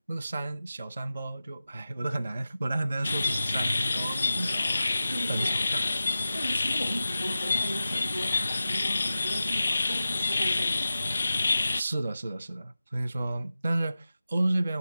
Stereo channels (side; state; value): both; inverted; correlation -0.94